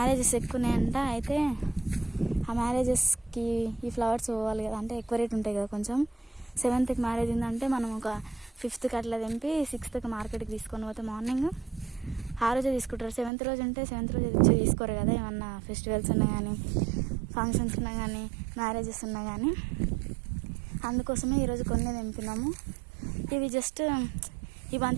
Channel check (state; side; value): drops out; left; at 13.3 s